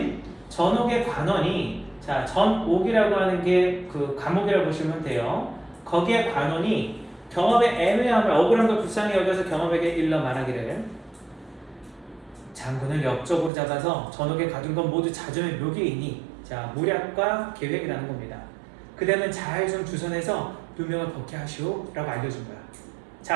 전옥의 관원이, 자, 전옥이라고 하는 게 그 감옥이라고 보시면 돼요. 거기에 관원이 경업의 애매함을, 억울한 걸 불쌍히 여겨서 경업에게 일러 말하기를 장군을 역적으로 잡아서 전옥에 가둔 건 모두 자점의 묘기이니, 자, 모략과 계획이라는 겁니다. 그대는 잘 좀 주선해서 누명을 벗게 하시오 라고 알려준 거야.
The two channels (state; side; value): drops out; left; at 13.5 s